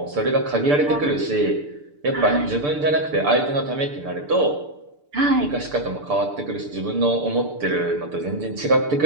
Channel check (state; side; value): late; left; 6.8 ms